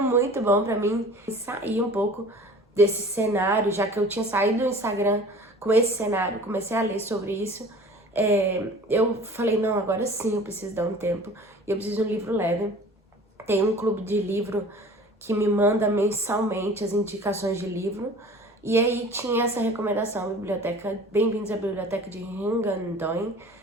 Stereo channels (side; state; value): both; normal; correlation 0.44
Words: muito bom pra mim sair um pouco desse cenário, já que eu tinha saído do Instagram com esse cenário, comecei a ler sobre isso. Eu falei, não, agora sim eu preciso dar um tempo e eu preciso de um livro leve. Tem um clube de livro que me manda mensalmente as indicações de livro. E aí tinha essa recomendação, biblioteca, Bem-vindos à Biblioteca de Hungandoy.